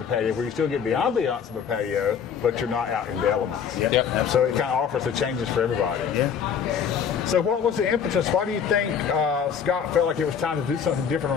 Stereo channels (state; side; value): quieter; right; 7.4 dB